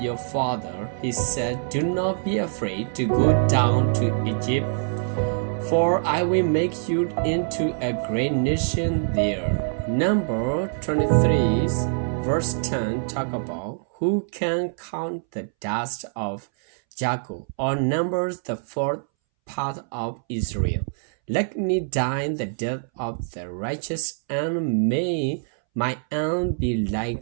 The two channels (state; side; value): silent; left; 62 dB below the other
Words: father. He said, do not be afraid to go down to Egypt, for I will make you into a great nation there. Number 23 verse 10 talk about, who can count the dust of Jacob, or numbers the fourth part of Israel? Let me die the death of the righteous, and may my end be